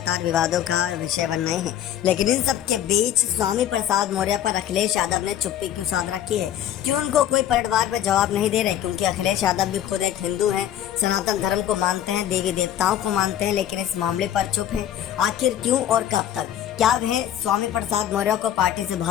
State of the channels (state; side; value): quieter; right; 10.9 dB